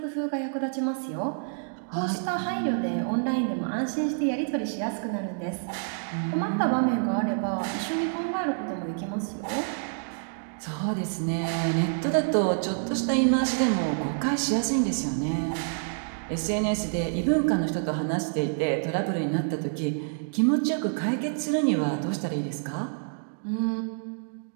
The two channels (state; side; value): silent; left; digital silence